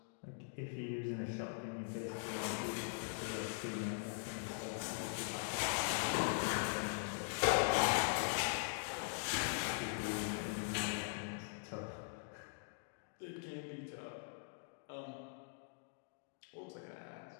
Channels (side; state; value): right; silent; digital silence